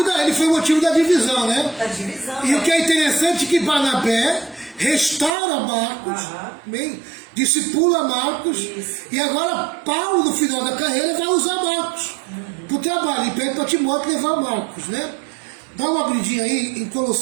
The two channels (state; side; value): drops out; left; at 5.3 s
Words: da divisão, né? Da divisão. E o que é interessante é que Barnabé restaura Marcos, bem, discipula Marcos, e agora Paulo, no final da carreira, vai usar Marcos para o trabalho, e pede para Timóteo levar Marcos, né? Dá uma abridinha aí em